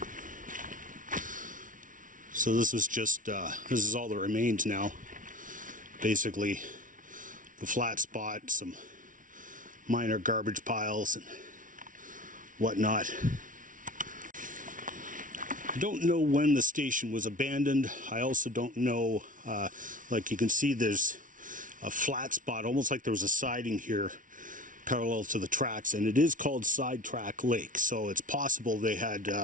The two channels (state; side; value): late; left; 0.38 ms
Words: So this was just, this is all that remains now. Basically, the flat spot, some minor garbage piles and whatnot. I don't know when the station was abandoned. I also don't know, like you can see there's a flat spot, almost like there was a siding here parallel to the tracks, and it is called Sidetrack Lake, so it's possible they